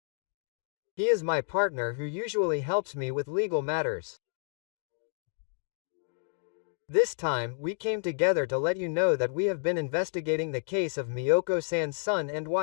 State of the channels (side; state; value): right; silent; digital silence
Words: He is my partner who usually helps me with legal matters. This time, we came together to let you know that we have been investigating the case of Miyoko-san's son and